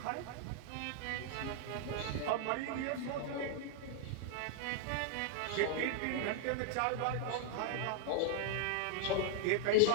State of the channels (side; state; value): both; different; correlation 0.00